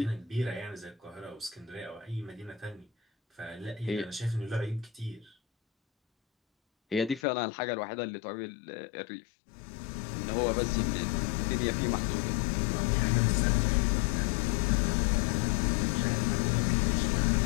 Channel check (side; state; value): right; drops out; at 7.2 s